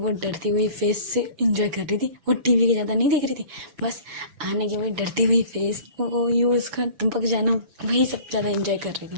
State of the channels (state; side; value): late; left; 5.9 ms